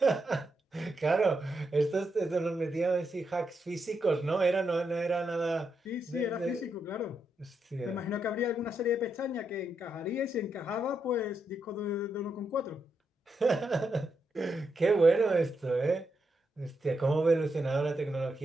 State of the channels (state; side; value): normal; both; correlation 0.82